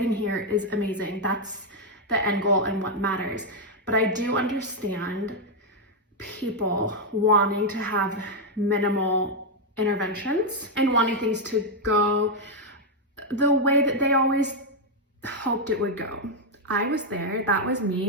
here is amazing. That's the end goal and what matters. But I do understand people wanting to have minimal interventions and wanting things to go the way that they always hoped it would go. I was there, that was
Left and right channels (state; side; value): normal; both; correlation 0.01